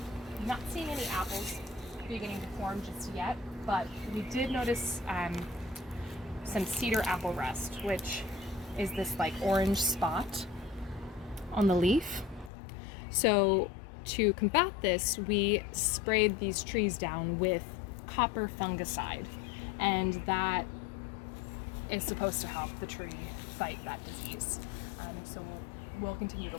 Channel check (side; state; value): right; drops out; at 12.5 s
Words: Not seeing any apples beginning to form just yet, but we did notice some cedar apple rust, which is this like orange spot on the leaf. So to combat this, we sprayed these trees down with copper fungicide, and that is supposed to help the tree fight that disease. So we'll continue to